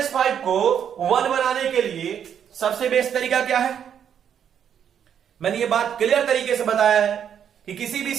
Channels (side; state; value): left; quieter; 8.6 dB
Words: को 1 बनाने के लिए सबसे बेस्ट तरीका क्या है, मैंने ये बात क्लियर तरीके से बताया है कि किसी भी